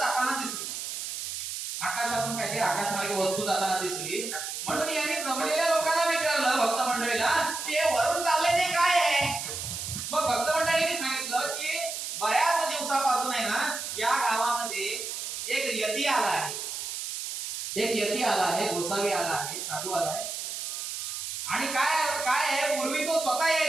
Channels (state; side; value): noise; right; hiss, 5 dB below the sound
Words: दिसली. आकाशातून काहीतरी आकाशमार्गे वस्तू जाताना दिसली. म्हणून यांनी जमलेल्या लोकांना विचारलं, भक्त मंडळीला, की हे वरून चाललंय ते काय आहे. मग भक्त मंडळींनी सांगितलं की बऱ्याच दिवसापासून आहे ना या गावामध्ये एक यती आला आहे. एक यती आला आहे, गोसावी आला आहे, साधू आला आहे. आणि काय काय आहे, पूर्वी तो स्वतः